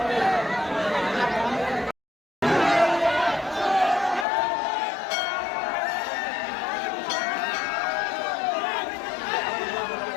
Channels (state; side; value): drops out; right; at 4.2 s